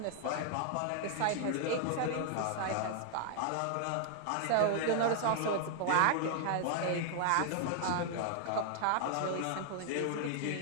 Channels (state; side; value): different; both; correlation 0.00